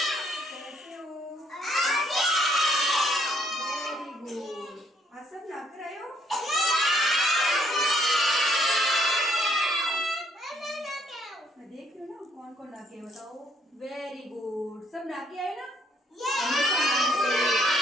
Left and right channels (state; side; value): normal; both; correlation 0.68